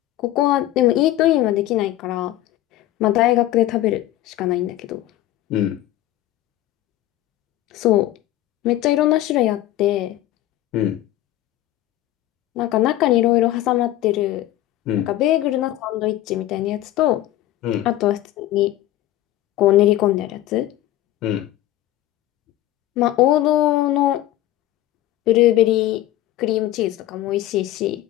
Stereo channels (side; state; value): right; quieter; 14.6 dB